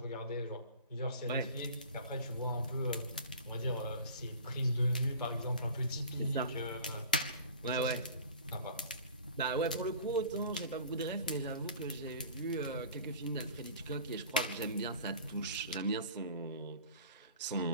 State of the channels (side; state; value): both; inverted; correlation -0.41